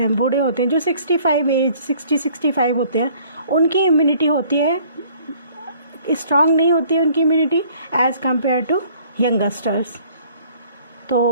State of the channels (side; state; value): both; inverted; correlation -0.56